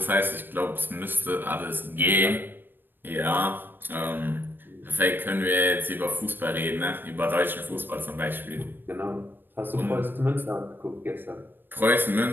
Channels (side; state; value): left; late; 0.095 ms